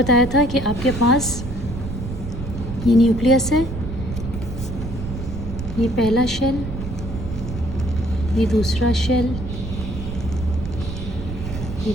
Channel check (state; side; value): noise; right; rumble, 7 dB below the sound